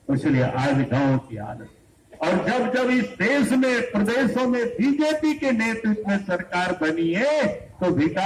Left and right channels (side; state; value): both; identical; correlation 1.00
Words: इसलिए आज गांव की हालत। और जब जब इस देश में प्रदेशों में बीजेपी के नेतृत्व में सरकार बनी है तो